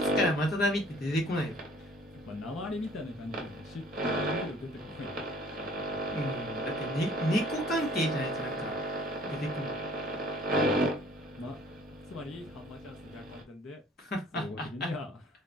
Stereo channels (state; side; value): normal; both; correlation 0.54